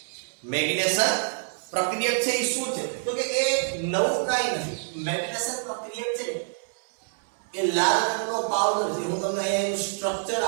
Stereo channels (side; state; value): left; silent; digital silence